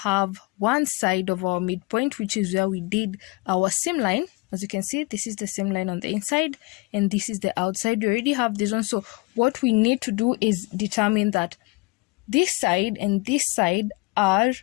one side of our midpoint, which is where we did our seam line. As you can see, this is the seam line on the inside and this is the outside. We already have this one. So what we need to do is determine that this side and this side are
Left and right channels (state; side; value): quieter; right; 24.8 dB